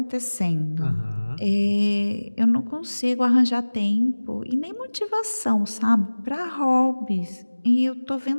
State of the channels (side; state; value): both; inverted; correlation -1.00